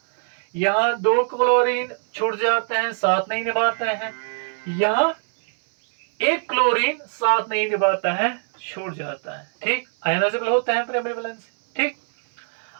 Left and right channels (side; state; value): left; silent; digital silence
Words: यहाँ 2 क्लोरीन छूट जाते हैं, साथ नहीं निभाते हैं। यहाँ 1 क्लोरीन साथ नहीं निभाता है, छूट जाता है। ठीक, आयनाइजेबल होता है प्राइमरी वैलेंसी। ठीक,